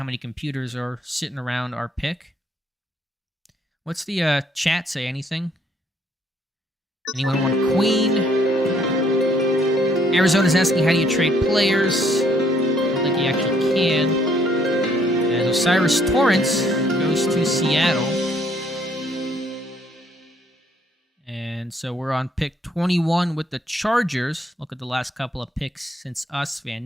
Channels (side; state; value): both; normal; correlation 0.66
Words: many computers are sitting around our pick. What's the chat say? Anything? Anyone want Queen? Arizona's asking, how do you trade players? I don't think you actually can. As Osiris Torrance goes to Seattle. And so we're on pick 21 with the Chargers. Look at the last couple of picks since us.